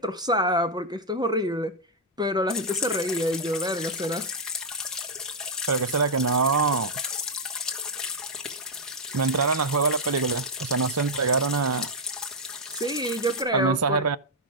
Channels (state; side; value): normal; both; correlation -0.03